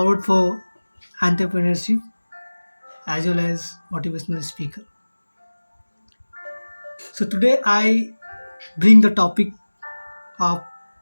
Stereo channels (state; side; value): inverted; both; correlation -1.00